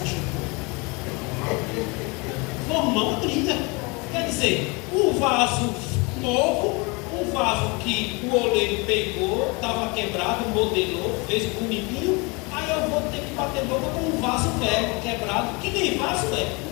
Formar uma briga. Quer dizer, o vaso novo, o vaso que o oleiro pegou, estava quebrado, modelou, fez bonitinho, aí eu vou ter que bater boca com um vaso velho, quebrado, que nem vaso é,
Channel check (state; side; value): quieter; right; 28.3 dB